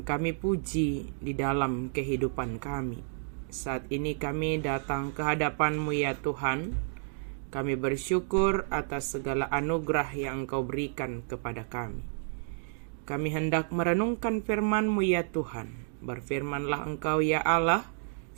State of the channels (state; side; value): silent; left; digital silence